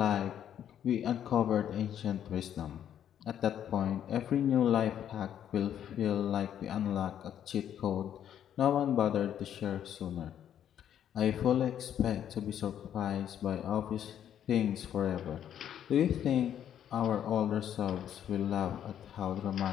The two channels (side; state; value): right; quieter; 9.9 dB